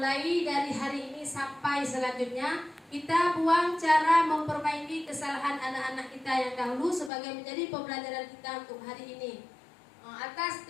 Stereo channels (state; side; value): drops out; right; at 7.1 s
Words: dari hari ini sampai selanjutnya. Kita buang cara memperbaiki kesalahan anak-anak kita yang dahulu sebagai menjadi pembelajaran kita untuk hari ini. Atas